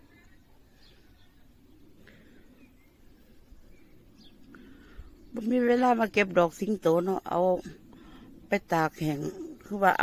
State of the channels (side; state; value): both; identical; correlation 1.00